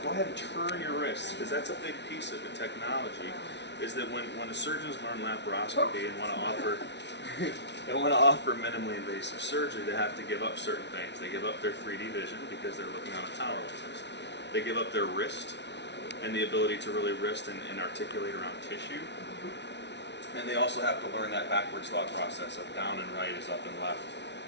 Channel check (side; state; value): right; late; 0.51 ms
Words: Go ahead and turn your wrists, because that's a big piece of the technology. Is that when the surgeons learn laparoscopy and want to offer minimally invasive surgery, they have to give up certain things. They give up their 3D vision because they're looking on a tower like this. They give up their wrist and the ability to really wrist and articulate around tissue. And they also have to learn that backwards thought process of down and right is up and left